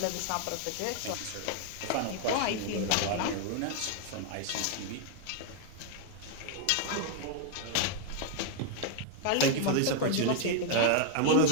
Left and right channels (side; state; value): both; different; correlation 0.00